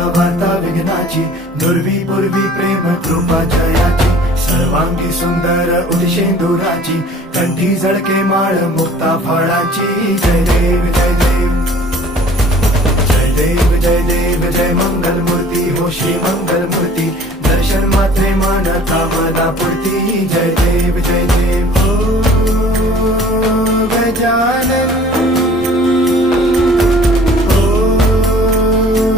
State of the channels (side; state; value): both; normal; correlation 0.50